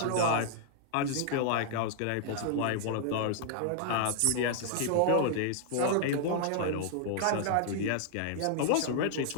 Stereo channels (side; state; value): both; different; correlation -0.01